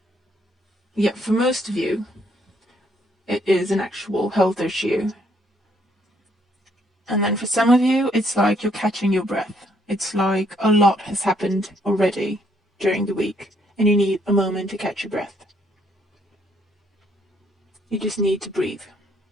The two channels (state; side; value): normal; both; correlation 0.69